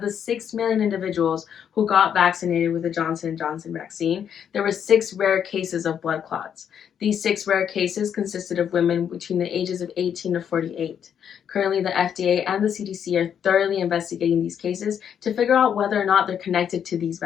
6 million individuals who got vaccinated with the Johnson & Johnson vaccine, there were 6 rare cases of blood clots. These 6 rare cases consisted of women between the ages of 18 to 48. Currently, the FDA and the CDC are thoroughly investigating these cases to figure out whether or not they're connected to these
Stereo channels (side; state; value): right; quieter; 8.4 dB